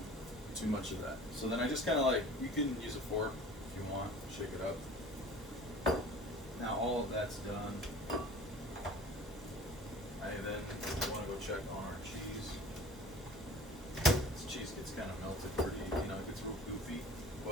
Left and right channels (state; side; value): normal; both; correlation 0.44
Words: much of that. So then I just kind of like, you can use a fork if you want, shake it up. Now all of that's done. I then want to go check on our cheese. This cheese gets kind of melted pretty, it gets real goofy,